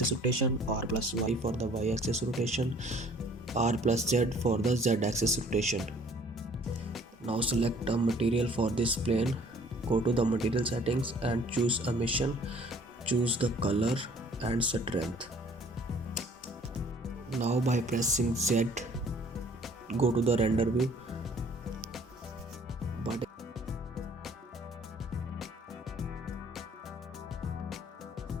rotation, R plus Y for the y-axis rotation, R plus Z for the z-axis rotation. Now select a material for this plane, go to the material settings and choose emission, choose the color and strength. Now by pressing Z, go to the render view, but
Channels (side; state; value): both; normal; correlation 0.55